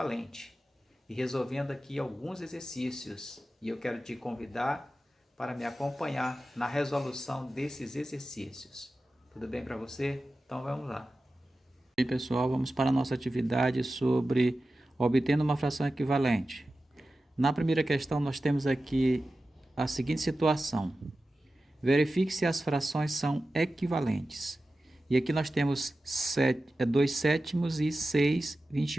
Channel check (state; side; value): normal; both; correlation 0.94